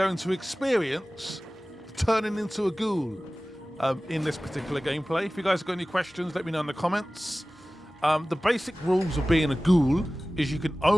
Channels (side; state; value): both; normal; correlation 0.97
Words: to experience turning into a ghoul in this particular gameplay. If you guys have got any questions, let me know in the comments. The basic rules of being a ghoul is you can